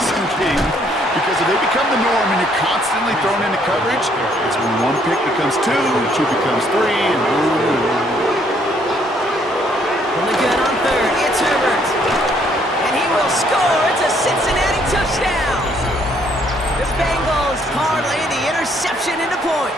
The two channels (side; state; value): both; normal; correlation 0.67